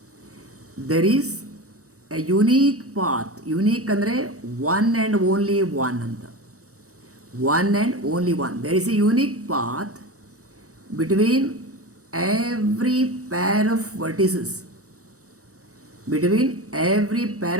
There is a unique path. Unique ಅಂದರೆ one and only one ಅಂತ. One and only one. There is a unique path between every pair of vertices. Between every pair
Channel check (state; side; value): late; left; 0.65 ms